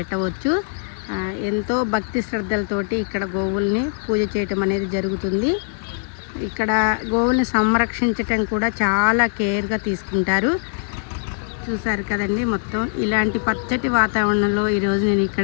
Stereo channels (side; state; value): right; silent; 65 dB below the other